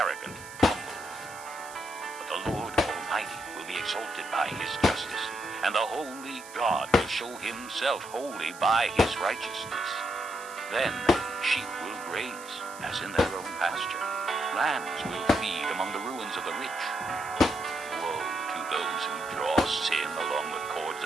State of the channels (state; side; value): noise; right; hiss, 17 dB below the sound